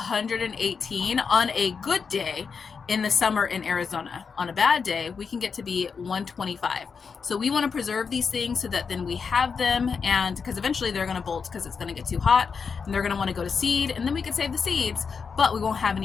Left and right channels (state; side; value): quieter; right; 5.7 dB